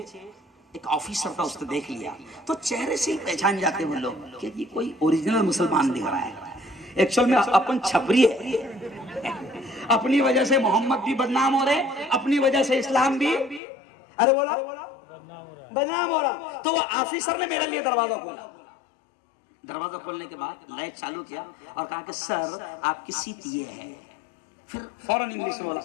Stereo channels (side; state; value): right; drops out; at 13.6 s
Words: एक ऑफिसर था, उसने देख लिया, तो चेहरे से ही पहचान जाते वो लोग कि ये कोई ओरिजिनल मुसलमान दिख रहा है। एक्चुअल में अपन छपरी है, अपनी वजह से मोहम्मद भी बदनाम हो रहे, अपनी वजह से इस्लाम भी, अरे बोला बदनाम हो रहा। तो वो ऑफिसर ने मेरे लिए दरवाजा खोला। दरवाजा खोलने के बाद लाइट चालू किया और कहा कि सर आपकी सीट ये है। फिर फौरन इंग्लिश में बोला,